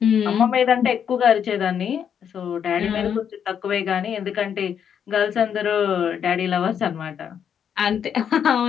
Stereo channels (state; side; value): quieter; right; 8.2 dB